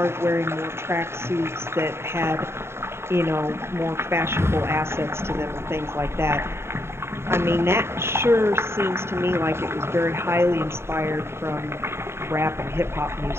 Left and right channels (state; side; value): late; left; 0.12 ms